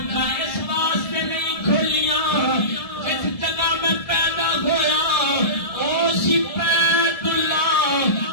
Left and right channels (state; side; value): late; right; 1.7 ms